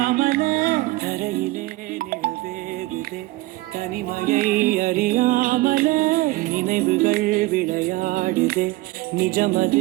தரையிலே நிழவேகுதே தனிமையை அறியாமலே நினைவுகள் விளையாடுதே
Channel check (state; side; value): quieter; left; 19.7 dB